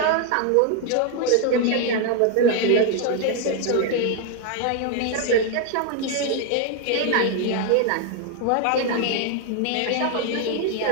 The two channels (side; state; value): both; different; correlation 0.01